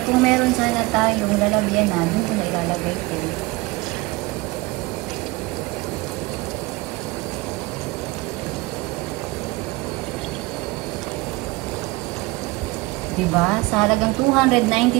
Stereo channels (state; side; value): quieter; left; 22.4 dB